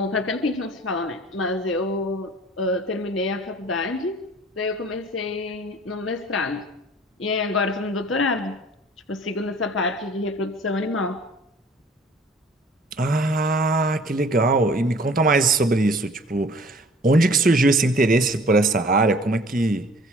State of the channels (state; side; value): normal; both; correlation 0.50